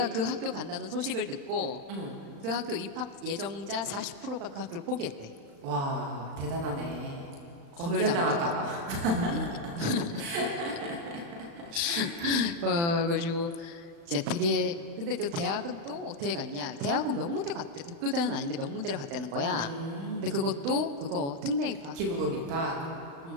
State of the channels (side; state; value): left; late; 35 ms